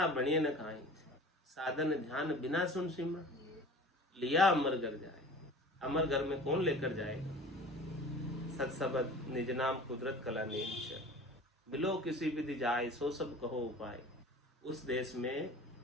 बनिए न खाए, साधन ध्यान बिना सुन सिमरा, लिया अमर घर जाए। अमर घर में कौन लेकर जाएगा? सत्सबद निज नाम कुदरत कला नेम, मिलो किसी विधि जाए, सो सब कहो उपाय। उस देश में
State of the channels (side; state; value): both; normal; correlation 0.41